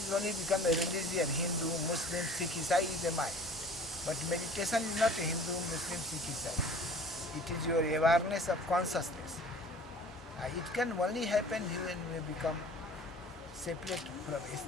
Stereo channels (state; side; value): normal; both; correlation 0.46